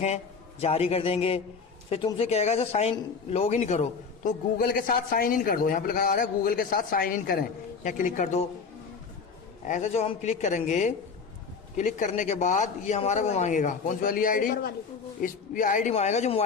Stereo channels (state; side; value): quieter; right; 5.4 dB